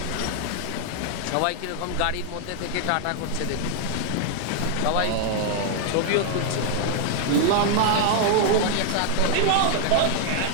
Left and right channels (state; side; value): different; both; correlation 0.00